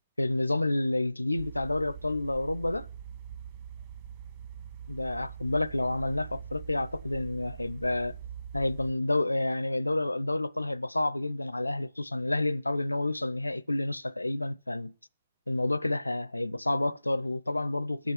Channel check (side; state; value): both; inverted; correlation -0.97